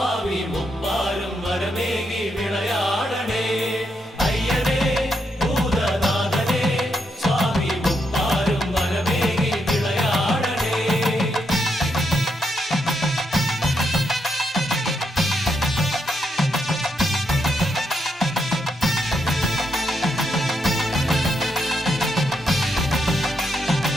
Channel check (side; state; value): both; normal; correlation 0.80